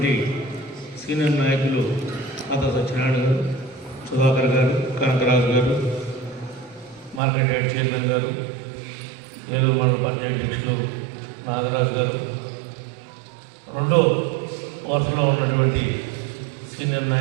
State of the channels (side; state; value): left; drops out; at 7.2 s